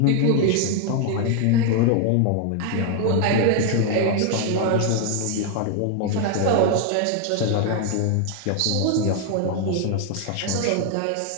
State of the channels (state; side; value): different; both; correlation 0.00